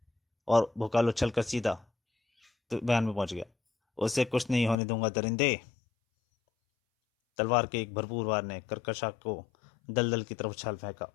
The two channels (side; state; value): right; drops out; at 4.8 s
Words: और भोकाल उछल कर सीधा तो बयान में पहुंच गया। उसे कुछ नहीं होने दूंगा दरिंदे! तलवार के एक भरपूर वार ने कर्कशा को दलदल की तरफ उछाल फेंका।